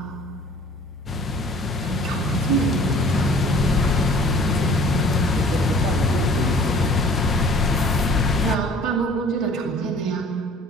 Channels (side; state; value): both; normal; correlation 0.50